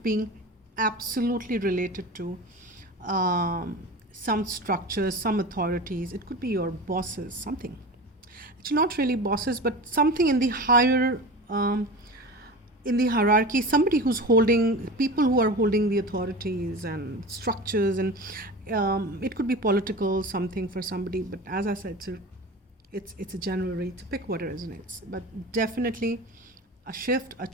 being absolutely related to some structures, some authorities. It could be your bosses, something. It's not really bosses, but something in the higher, in the hierarchy, somebody who's holding, people who are holding the authorities and structures, and it could be political, something for somebody. But as I said, it's a general read, to pick what it resonates. But definitely a shift, a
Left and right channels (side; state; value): both; normal; correlation 0.31